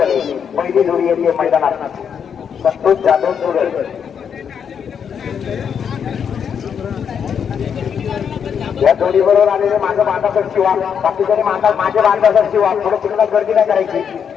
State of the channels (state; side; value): quieter; right; 7.5 dB